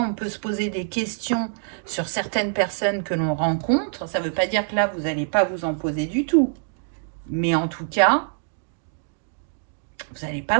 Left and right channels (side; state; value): left; silent; digital silence